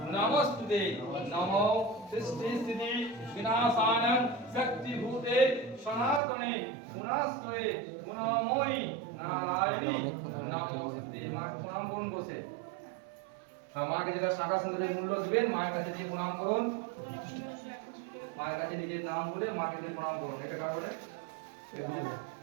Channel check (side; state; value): left; drops out; at 6.2 s